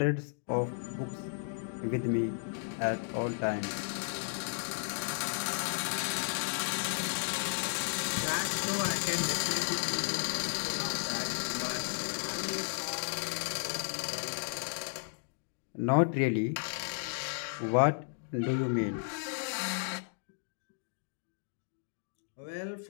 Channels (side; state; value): right; silent; digital silence